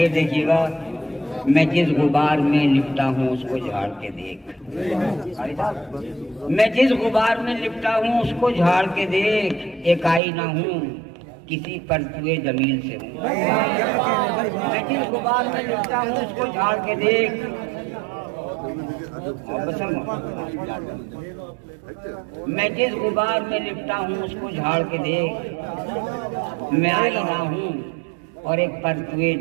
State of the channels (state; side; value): drops out; left; at 10.2 s